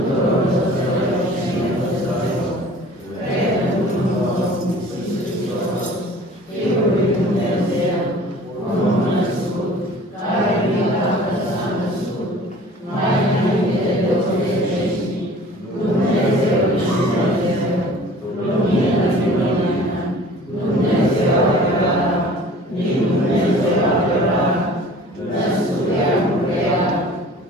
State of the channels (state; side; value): normal; both; correlation 0.46